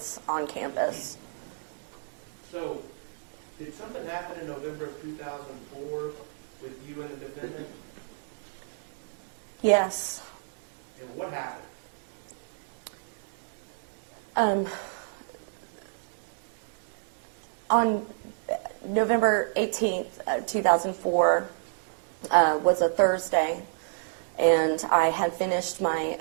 on campus. So, did something happen in November of 2004 with you and the defendant? Yes. And what happened? On November 18th, 2004 was a Thursday, and I had finished my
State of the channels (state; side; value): silent; left; digital silence